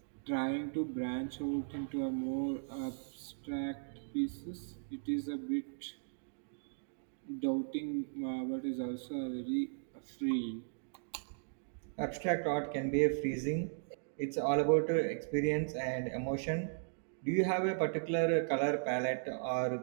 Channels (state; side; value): silent; left; digital silence